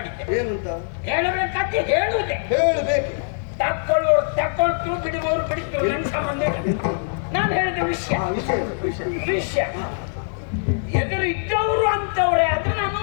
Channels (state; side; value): silent; right; digital silence